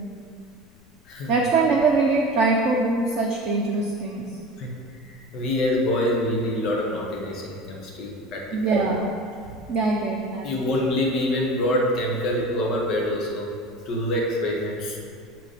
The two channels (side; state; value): left; noise; rumble, 28 dB below the sound